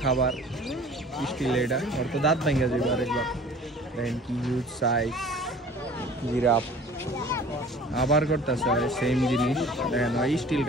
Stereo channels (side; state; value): both; normal; correlation 0.47